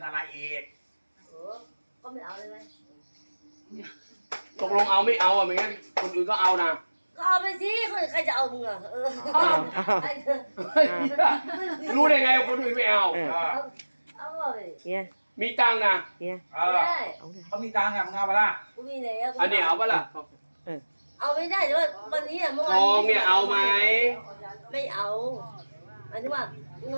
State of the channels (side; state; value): both; inverted; correlation -1.00